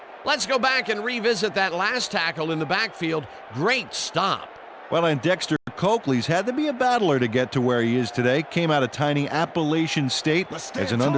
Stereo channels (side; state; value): both; identical; correlation 1.00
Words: Let's go back and revisit that last tackle in the backfield. Great stop. Well, and Dexter Coakley's had to be a battler to get to where he is today. Came out of tiny Appalachian State as an